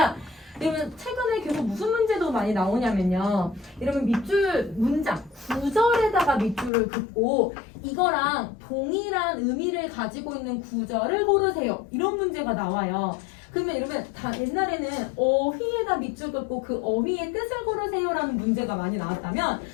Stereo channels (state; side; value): drops out; right; at 6.7 s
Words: 여러분 최근에 계속 무슨 문제도 많이 나오냐면요. 여러분 밑줄 문장, 구절에다가 밑줄을 긋고 이거랑 동일한 의미를 가지고 있는 구절을 고르세요. 이런 문제가 나와요. 그러면 여러분 다 옛날에는 어휘에다 밑줄 긋고 그 어휘의 뜻을 고르세요라는 문제가 많이 나왔다면